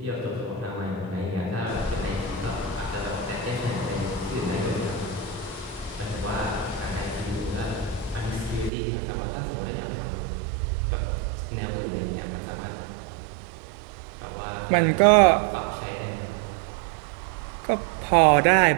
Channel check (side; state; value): left; drops out; at 8.7 s